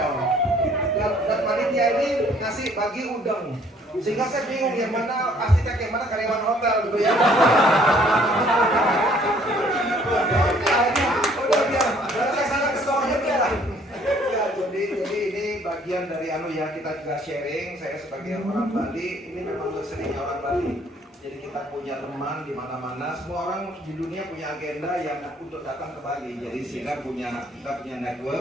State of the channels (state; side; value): normal; both; correlation 0.60